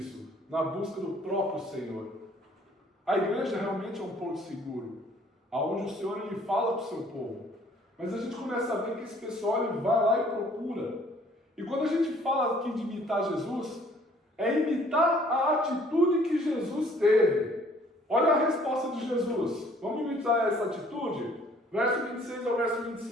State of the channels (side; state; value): both; normal; correlation 0.58